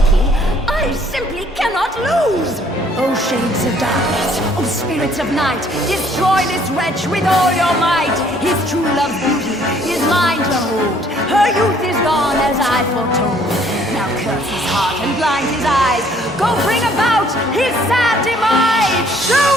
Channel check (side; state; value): both; normal; correlation 0.62